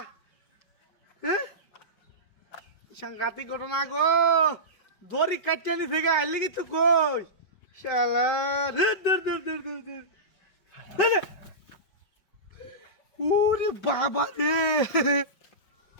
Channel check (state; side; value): late; right; 5.3 ms